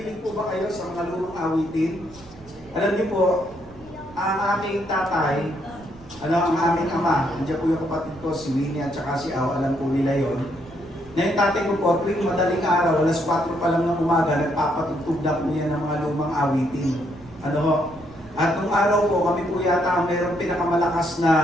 po ba kayo sa mga lumang awitin? Alam niyo po, ang aking tatay, ang aming ama, nandiyan po yung kapatid ko, si Winnie at saka si Au, alam po nila yon. Na yung tatay ko po, tuwing madaling araw, alas 4 pa lang ng umaga, nagpapatugtog na po yan ng mga lumang awitin. At nung araw po, kami po yata ang mayroong pinakamalakas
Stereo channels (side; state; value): right; noise; rumble, 22 dB below the sound